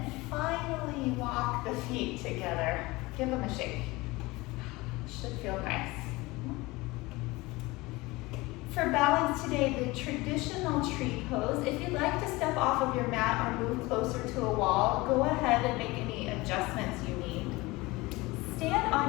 finally walk the feet together. Give them a shake. Should feel nice. For balance today, the traditional tree pose. If you'd like to step off of your mat or move closer to a wall, go ahead and make any adjustments you need. Stand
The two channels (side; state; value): right; quieter; 21.9 dB